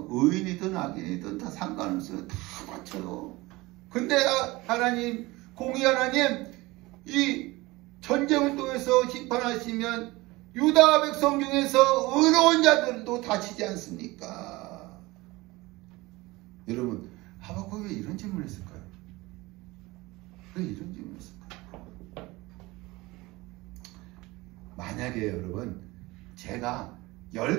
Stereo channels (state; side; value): quieter; left; 21.2 dB